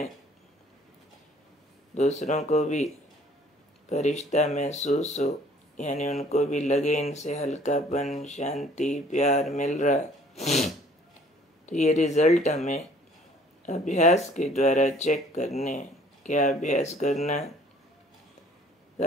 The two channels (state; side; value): normal; both; correlation 0.56